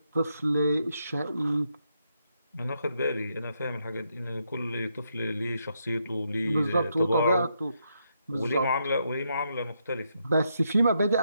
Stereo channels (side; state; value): both; inverted; correlation -0.79